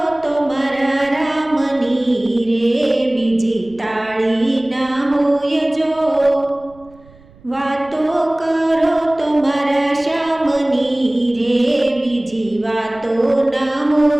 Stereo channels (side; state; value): right; noise; rumble, 26 dB below the sound